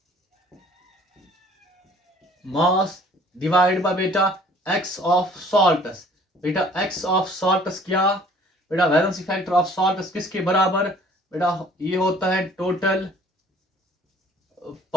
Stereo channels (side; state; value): both; normal; correlation 0.54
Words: मास डिवाइड बाय बेटा एक्स ऑफ सॉल्ट्स। बेटा एक्स ऑफ सॉल्ट्स क्या, बेटा वैलेंसी फैक्टर ऑफ सॉल्ट्स किसके बराबर, बेटा ये होता है total